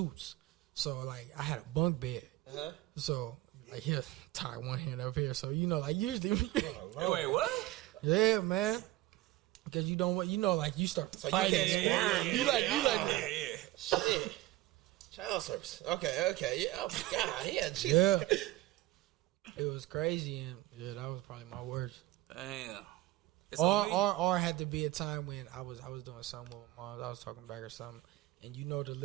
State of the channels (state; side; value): quieter; left; 17.2 dB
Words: So, like, I had a bunk bed. Uh-huh. So, like, he'll tie one hand up here. So, you know, like, usually... Wait, what? Yeah, man. Because you don't want... You know, like, you start So fighting. you can't squirm. You like... Yeah. Shit. Child service. Okay. Yeah. Oh, my God. Yeah, Jesus. Yeah. It was crazy, and yeah, that was probably my worst. Damn. Or had to be a time when I was doing something with my mom. I was talking back or something, and